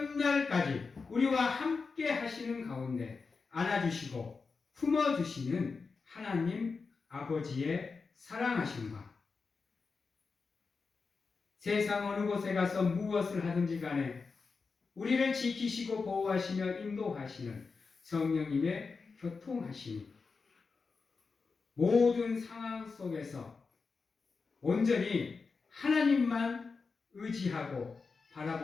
우리와 함께 하시는 가운데 안아주시고 품어주시는 하나님 아버지의 사랑하심과 세상 어느 곳에 가서 무엇을 하든지 간에 우리를 지키시고 보호하시며 인도하시는 성령님의 교통하심이 모든 상황 속에서 온전히 하나님만 의지하고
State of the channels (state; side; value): quieter; right; 4.7 dB